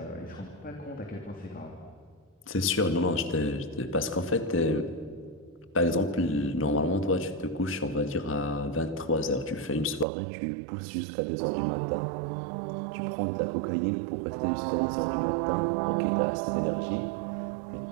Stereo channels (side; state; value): left; drops out; at 10.1 s